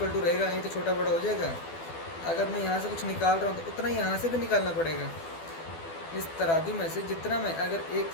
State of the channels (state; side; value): late; right; 12 ms